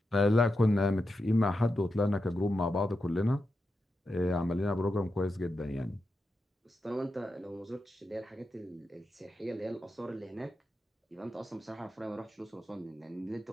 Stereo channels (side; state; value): both; normal; correlation 0.88